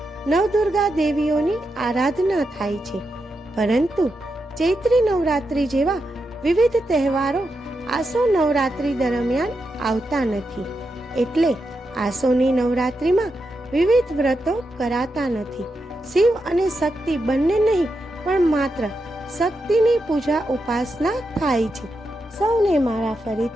નવદુર્ગા દેવીઓની આરાધના થાય છે, પરંતુ ચૈત્રી નવરાત્રિ જેવા વિવિધ તહેવારો આસો નવરાત્રિ દરમિયાન આવતા નથી. એટલે આસોની નવરાત્રિમાં વિવિધ વ્રતો કરાતા નથી. શિવ અને શક્તિ બંને નહીં, પણ માત્ર શક્તિની પૂજા ઉપાસના થાય છે. સૌને મારા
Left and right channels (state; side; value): normal; both; correlation 0.86